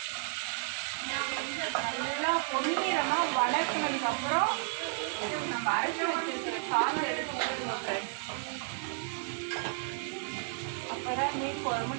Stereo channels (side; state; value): left; silent; 56 dB below the other